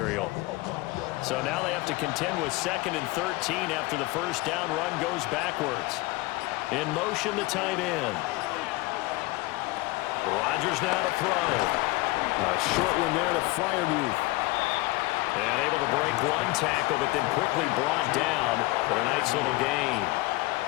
So now they have to contend with 2nd and 13 after the first down run goes backwards. In motion, the tight end. Rodgers now to throw. A short one there to Freiermuth. And able to break one tackle, but then quickly brought down for a nice little gain.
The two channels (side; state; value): right; quieter; 21.2 dB